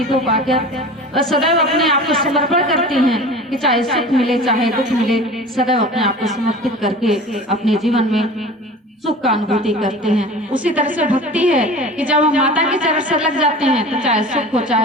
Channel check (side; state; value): both; normal; correlation 0.37